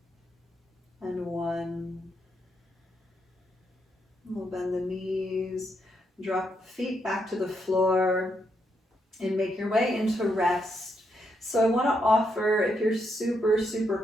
And 1. We'll bend the knees, drop the feet back to the floor, and make your way into rest. So I want to offer, if you're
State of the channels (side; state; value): both; normal; correlation 0.79